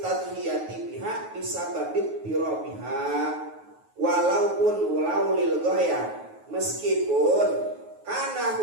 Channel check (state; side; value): late; left; 9.4 ms